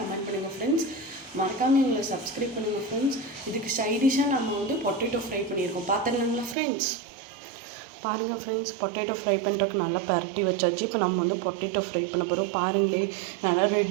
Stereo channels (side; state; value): left; drops out; at 6.6 s